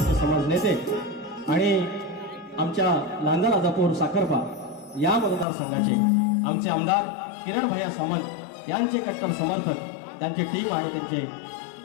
समाज नेते आणि आमच्या लांजा राजापूर साखरपा या मतदारसंघाचे आमचे आमदार किरण भैया सामंत यांचे कट्टर समर्थक, त्यांची टीम आणि त्यांचे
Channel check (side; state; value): right; drops out; at 5.5 s